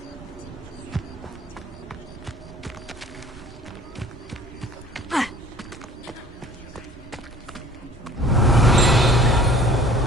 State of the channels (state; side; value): normal; both; correlation 0.49